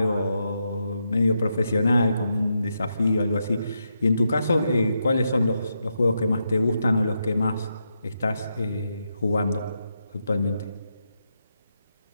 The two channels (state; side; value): inverted; both; correlation -0.84